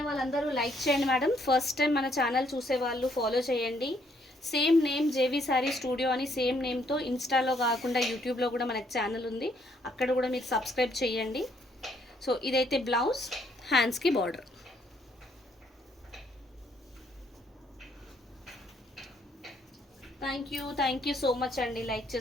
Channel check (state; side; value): normal; both; correlation 0.69